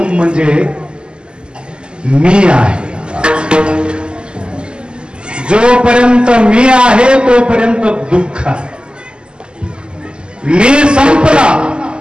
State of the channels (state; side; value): late; left; 0.049 ms